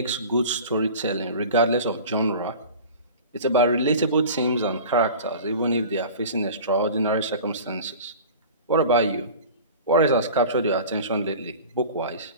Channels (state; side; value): inverted; both; correlation -0.38